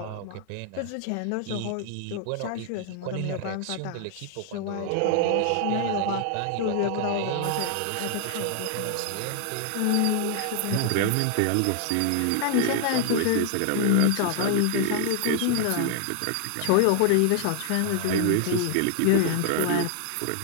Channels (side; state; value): both; different; correlation 0.00